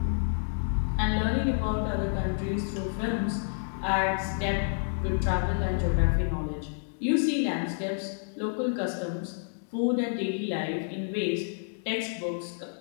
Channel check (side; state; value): right; silent; digital silence